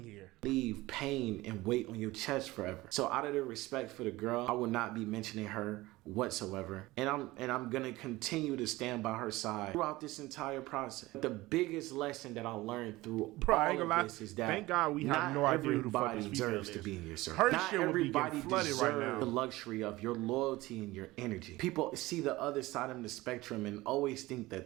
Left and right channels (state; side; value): quieter; left; 19.3 dB